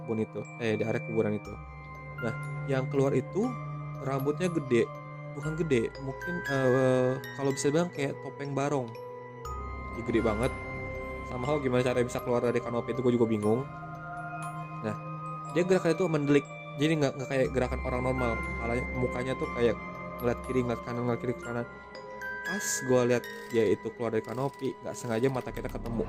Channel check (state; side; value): identical; both; correlation 1.00